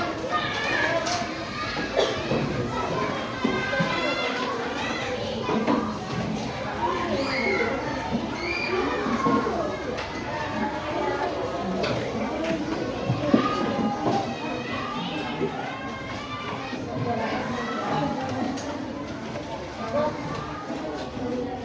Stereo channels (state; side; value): identical; both; correlation 1.00